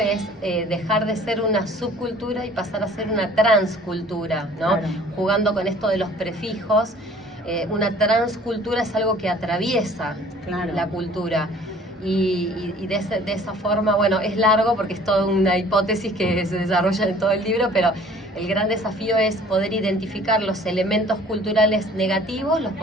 dejar de ser una subcultura y pasar a ser una transcultura, ¿no? Claro. Jugando con esto de los prefijos. Una transcultura es algo que atraviesa Claro. la cultura. Y de esa forma, bueno, es largo porque es toda una hipótesis que se desarrolla en todo el libro, pero el gran desafío es poder identificar los elementos culturales negativos, los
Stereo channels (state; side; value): normal; both; correlation 0.52